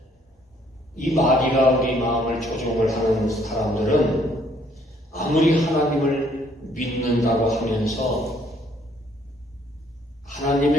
이 마귀가 우리 마음을 조종을 하는 사람들은 아무리 하나님을 믿는다고 하면서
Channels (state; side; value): normal; both; correlation 0.64